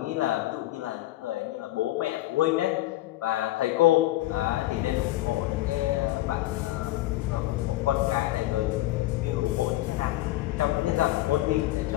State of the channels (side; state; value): right; quieter; 16.3 dB